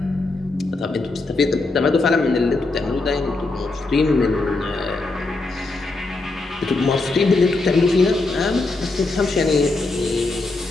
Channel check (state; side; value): quieter; right; 3.3 dB